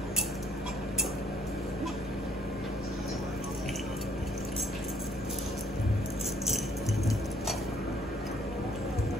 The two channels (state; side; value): normal; both; correlation 0.64